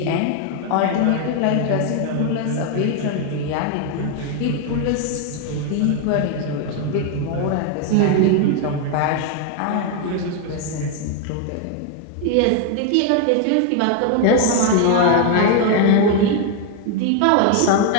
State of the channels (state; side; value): different; both; correlation 0.01